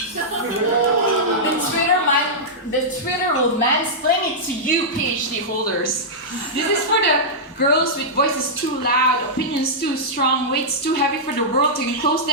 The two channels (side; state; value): both; normal; correlation -0.11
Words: The Twitter will mansplain it to you, PhD holders. This is for the girls with voices too loud, opinions too strong, weights too heavy for the world to enclose